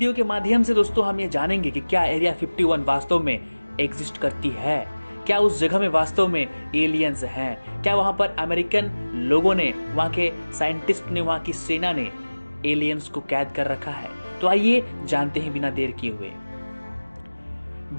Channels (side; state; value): both; inverted; correlation -1.00